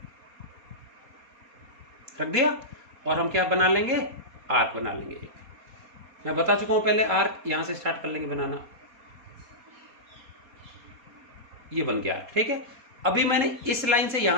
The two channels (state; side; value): late; left; 4.2 ms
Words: रख दिया, और हम क्या बना लेंगे, आर्क बना लेंगे। मैं बता चुका हूं पहले, आर्क यहां से स्टार्ट कर लेंगे बनाना, ये बन गया, ठीक है। अभी मैंने इस लाइन से